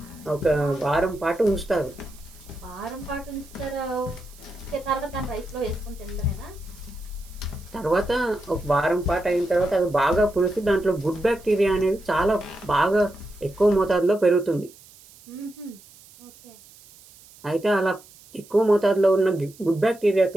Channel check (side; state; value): right; noise; hiss, 24 dB below the sound